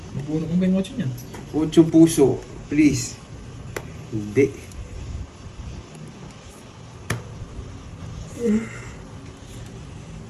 Mabuno kong ba yung watch niyan? 8 puso, please. Hindi.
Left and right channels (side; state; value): both; identical; correlation 1.00